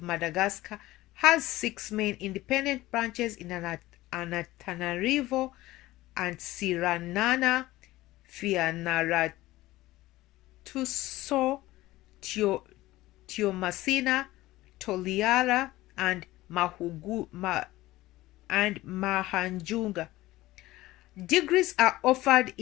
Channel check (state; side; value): quieter; right; 17.4 dB